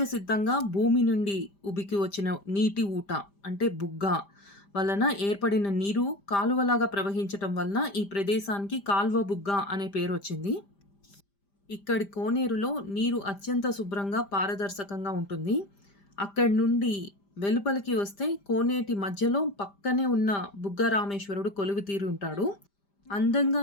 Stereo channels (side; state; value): right; late; 5.0 ms